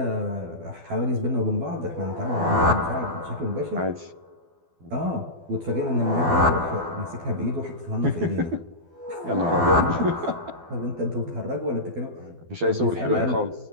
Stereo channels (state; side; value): late; left; 12 ms